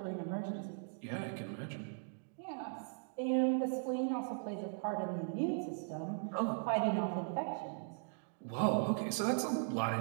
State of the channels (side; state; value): left; silent; digital silence